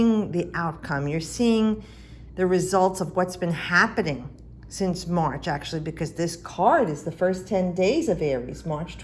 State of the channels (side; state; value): both; identical; correlation 1.00